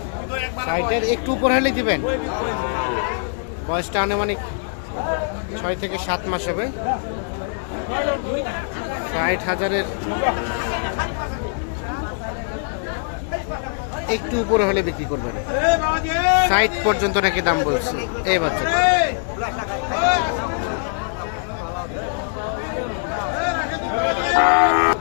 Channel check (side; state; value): right; silent; 64 dB below the other